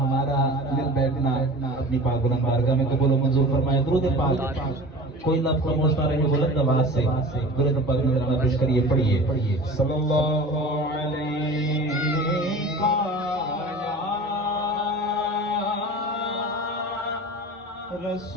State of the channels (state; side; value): normal; both; correlation 0.38